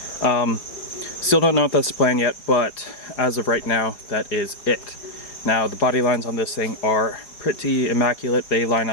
Still don't know if that's the plan yet, but as of right now, that is it. Now the body lines on this thing are pretty immaculate. They line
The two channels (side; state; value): right; late; 4.8 ms